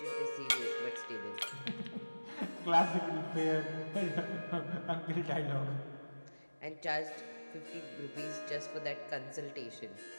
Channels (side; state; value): both; inverted; correlation -1.00